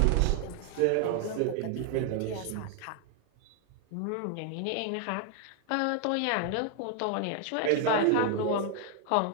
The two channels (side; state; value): both; different; correlation 0.00